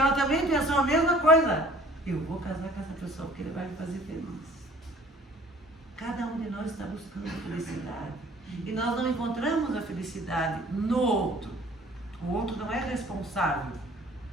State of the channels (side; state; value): both; normal; correlation 0.53